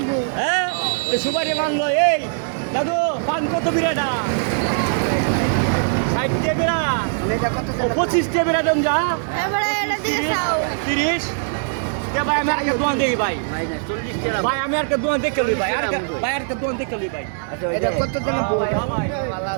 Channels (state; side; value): silent; left; digital silence